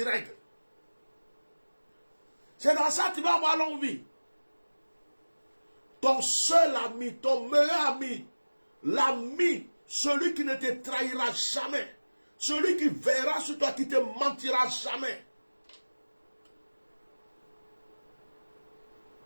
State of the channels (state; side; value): inverted; both; correlation -1.00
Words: règles. C'est dans ça que tu vas avoir longue vie. Ton seul ami, ton meilleur ami, l'ami, celui qui ne te trahira jamais, celui qui verra sur toi, qui ne te mentira jamais.